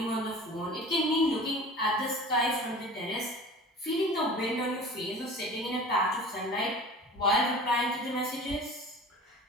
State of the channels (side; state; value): both; normal; correlation 0.39